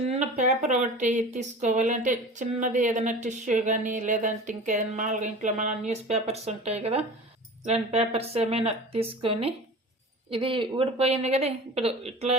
పేపర్ ఒకటి తీసుకోవాలి. అంటే చిన్నది ఏదైనా టిష్యూ కానీ, లేదంటే ఇంకేదైనా మామూలుగా ఇంట్లో మన న్యూస్ పేపర్స్ ఉంటాయి కదా, ఇలాంటి పేపర్స్ ఏమైనా తీసుకొని, ఇది ఊడిపోయింది కదా, ఇప్పుడు ఇట్లా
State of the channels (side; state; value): both; normal; correlation 0.37